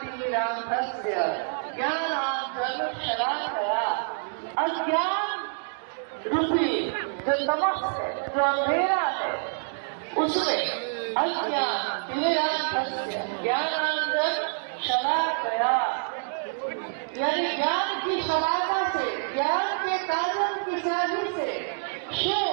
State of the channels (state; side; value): silent; left; digital silence